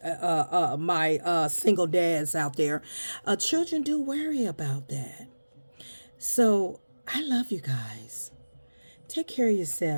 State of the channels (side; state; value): both; inverted; correlation -1.00